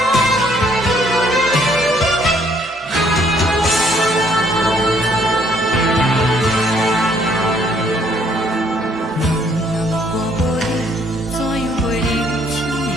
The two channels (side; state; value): both; normal; correlation 0.65